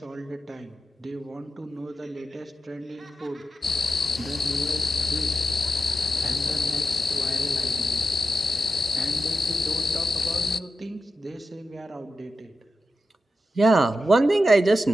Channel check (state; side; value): normal; both; correlation 0.89